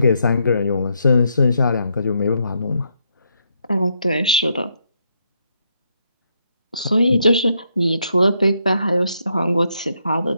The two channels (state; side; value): inverted; both; correlation -0.77